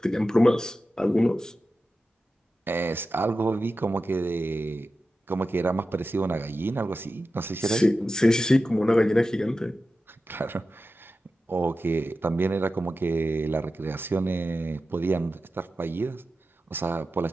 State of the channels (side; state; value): both; normal; correlation 0.92